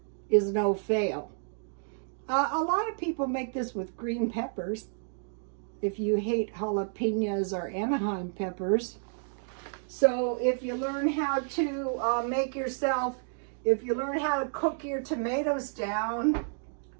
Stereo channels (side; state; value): left; silent; digital silence